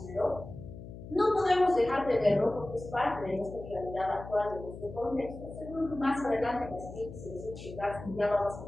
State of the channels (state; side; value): noise; left; hum, 13 dB below the sound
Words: pero no podemos dejar de verlo porque es parte de nuestra realidad actual, de nuestro contexto. Seguro más adelante en las siguientes sesiones ya vamos